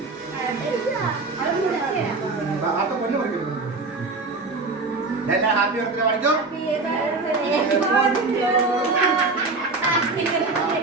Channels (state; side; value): quieter; left; 3.7 dB